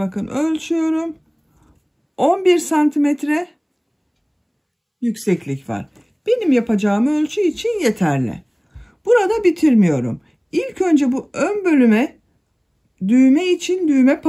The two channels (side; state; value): both; identical; correlation 1.00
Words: ölçüyorum. 11 santimetre yükseklik var. Benim yapacağım ölçü için yeterli. Burada bitirmiyorum. İlk önce bu ön bölüme düğme için düğme